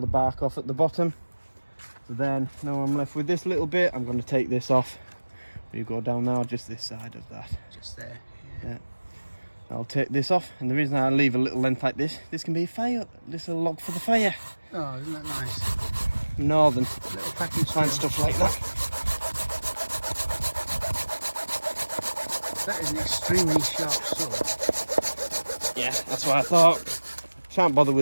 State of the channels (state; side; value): inverted; both; correlation -1.00